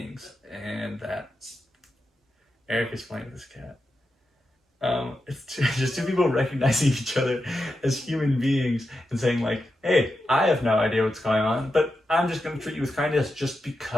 and that Eric is playing with this cat. It's just two people recognizing each other as human beings and saying like, hey, I have no idea what's going on, but I'm just going to treat you with kindness just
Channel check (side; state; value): both; normal; correlation 0.88